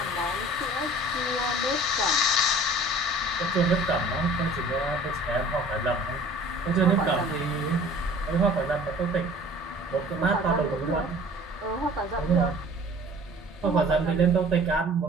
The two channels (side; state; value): both; normal; correlation 0.48